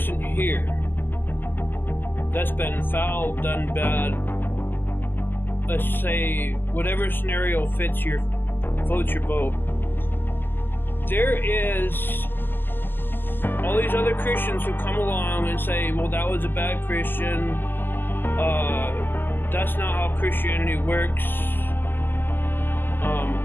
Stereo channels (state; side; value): late; right; 0.094 ms